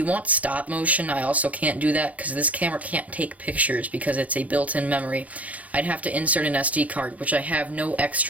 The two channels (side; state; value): left; late; 0.071 ms